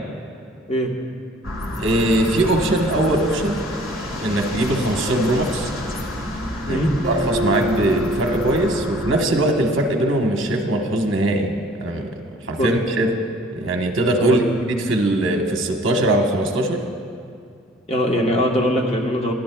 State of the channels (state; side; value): normal; both; correlation 0.52